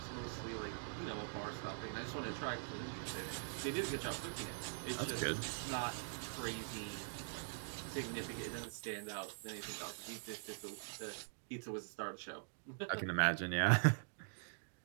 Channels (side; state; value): left; silent; digital silence